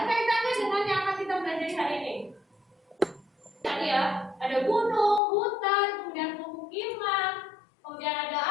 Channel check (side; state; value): right; drops out; at 5.2 s